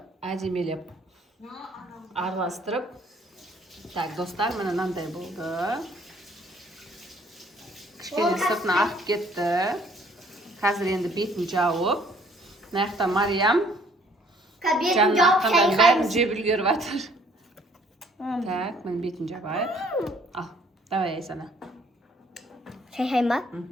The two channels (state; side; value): normal; both; correlation 0.60